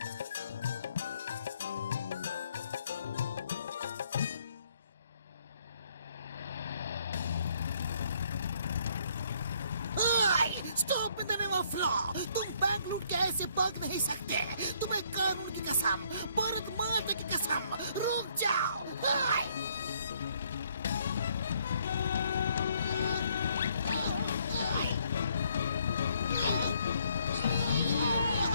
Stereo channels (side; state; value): both; inverted; correlation -0.66